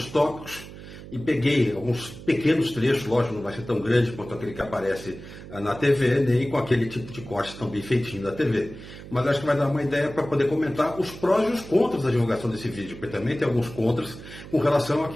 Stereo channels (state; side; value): noise; right; hum, 14 dB below the sound